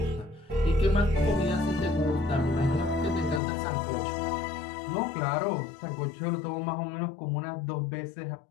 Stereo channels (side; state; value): right; drops out; at 3.4 s